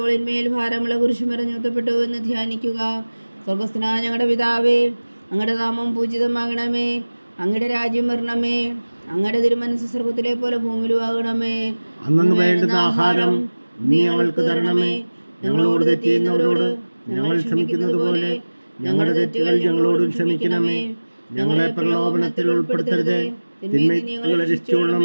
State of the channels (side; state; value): both; inverted; correlation -1.00